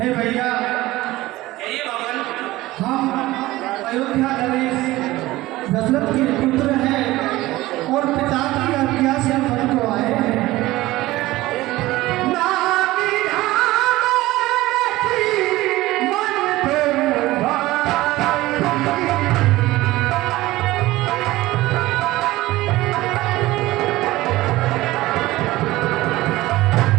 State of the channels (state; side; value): quieter; left; 17.9 dB